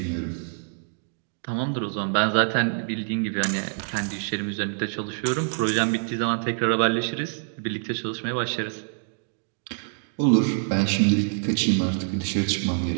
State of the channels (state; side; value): silent; left; digital silence